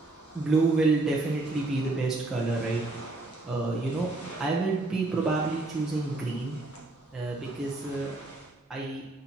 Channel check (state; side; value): quieter; left; 3.0 dB